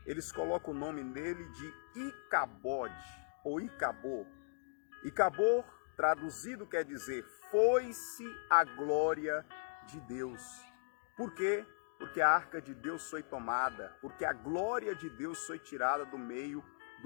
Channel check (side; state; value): right; silent; digital silence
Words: eles colocam o nome dele de Icabode, ou Icabô. Icabô, traduzido, quer dizer, foi-se a glória de Deus. Por quê? Porque a arca de Deus foi tomada, porque a glória de Deus foi tirada do meio